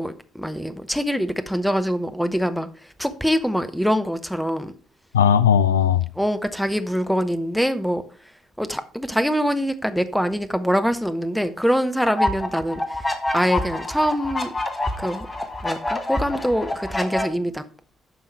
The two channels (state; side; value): normal; both; correlation 0.67